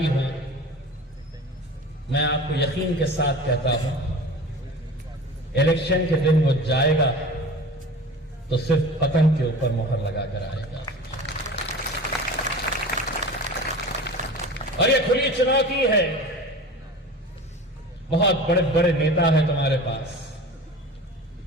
हो, मैं आपको यकीन के साथ कहता हूं इलेक्शन के दिन वो जाएगा तो सिर्फ पतंग के ऊपर मोहर लगाकर आएगा। और ये खुली चुनौती है। बहुत बड़े बड़े नेता हैं तुम्हारे पास,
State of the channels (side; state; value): both; normal; correlation 0.36